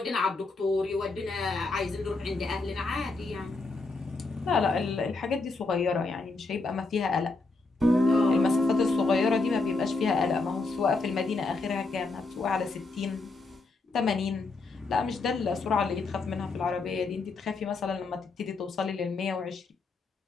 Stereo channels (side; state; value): right; quieter; 3.6 dB